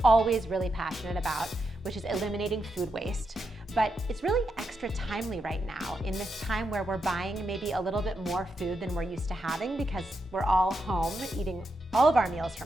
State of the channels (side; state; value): both; normal; correlation 0.84